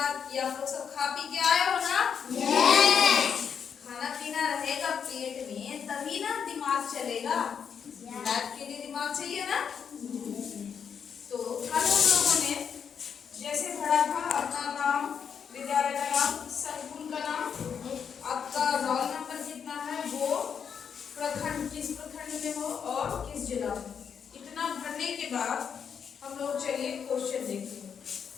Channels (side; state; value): right; quieter; 7.2 dB